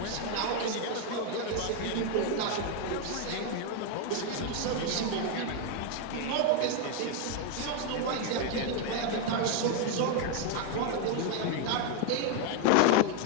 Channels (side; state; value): both; different; correlation 0.01